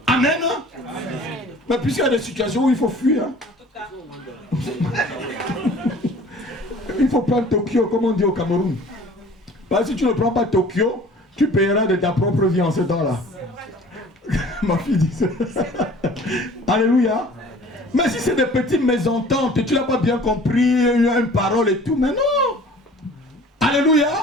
Amen. Amen. Mais puisqu'il y a des situations où il faut fuir, hein. Il faut prendre Tokyo, comme on dit au Cameroun. Parce que si tu ne prends pas Tokyo, tu payeras de ta propre vie en ce temps-là. Ma fille dit ça. Alléluia. Mais si c'est des petites mésententes, tu n'as pas bien compris une parole et tout, mais non. Alléluia.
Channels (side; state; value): both; normal; correlation 0.48